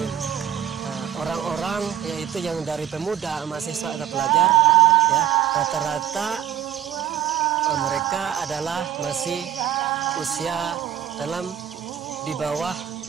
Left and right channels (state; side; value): quieter; left; 10.7 dB